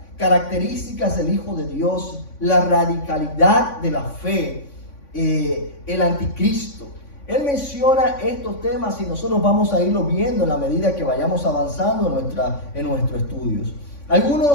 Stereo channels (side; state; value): right; late; 3.6 ms